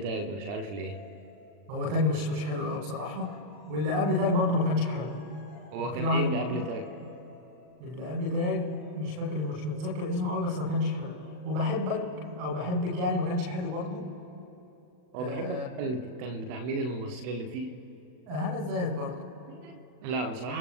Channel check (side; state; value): left; late; 40 ms